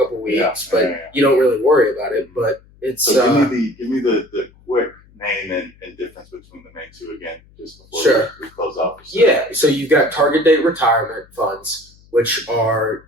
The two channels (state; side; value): noise; left; hum, 28 dB below the sound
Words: of weeks, but you don't really worry about it. But it's so give me the quick name and difference between the main two again, just before we close off. Yeah. So you've got target date retirement funds, which are